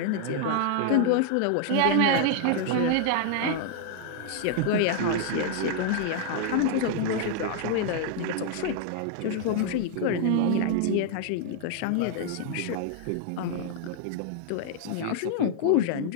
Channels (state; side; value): different; both; correlation 0.00